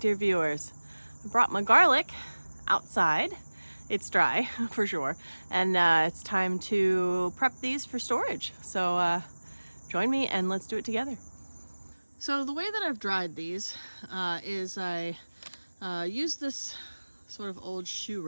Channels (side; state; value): both; inverted; correlation -1.00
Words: viewers. I brought my garlic outside. It's dry for sure, and it's time to prep these for storage. So join me and let's do it together. So the way that I've dried these is I use this sort of old shoe